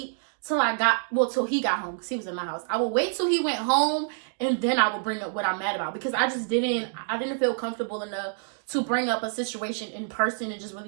till he got home because he was in my house. I would wait till he went home and then I would bring up what I'm mad about because I didn't feel comfortable enough to bring up a situation in person and just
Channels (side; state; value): left; silent; digital silence